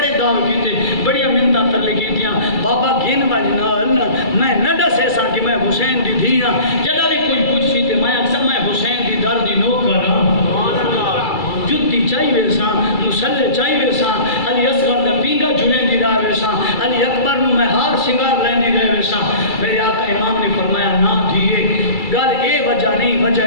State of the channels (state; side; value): late; right; 2.3 ms